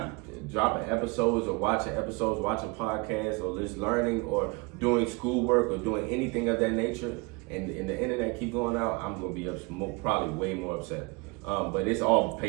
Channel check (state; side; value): quieter; left; 28.3 dB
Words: dropping episodes or watching podcasts or just learning or doing schoolwork or doing anything of that nature, and the internet keep going out, I'm gonna be probably way more upset. But it's all